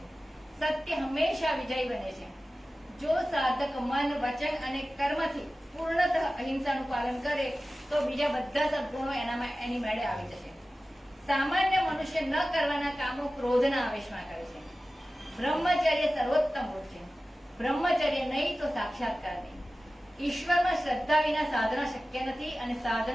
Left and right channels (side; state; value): both; normal; correlation 0.96